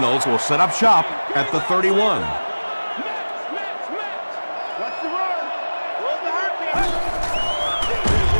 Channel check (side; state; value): both; inverted; correlation -1.00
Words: will set up shop at the 31.